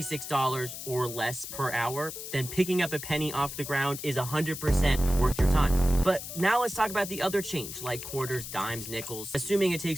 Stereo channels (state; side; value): noise; left; hiss, 9 dB below the sound